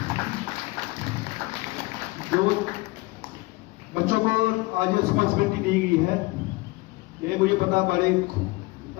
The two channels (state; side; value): quieter; right; 23.0 dB